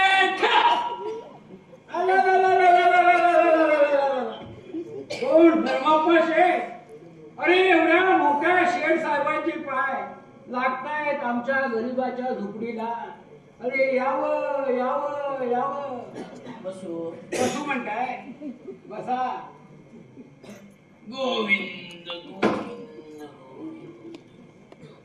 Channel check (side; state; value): both; identical; correlation 1.00